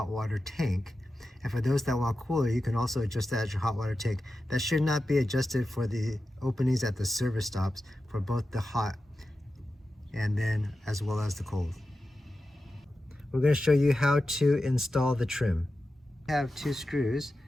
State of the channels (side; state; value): both; normal; correlation 0.92